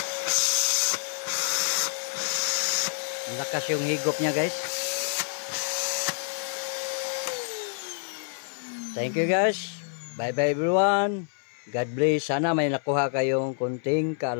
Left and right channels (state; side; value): silent; right; 58 dB below the other